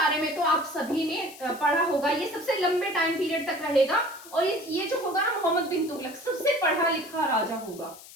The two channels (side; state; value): left; noise; hiss, 18 dB below the sound